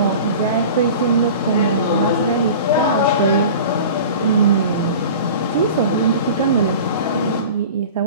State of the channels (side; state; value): both; inverted; correlation -0.38